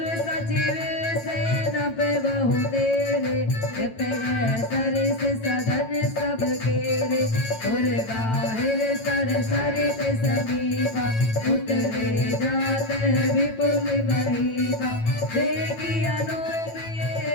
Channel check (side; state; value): right; late; 9.0 ms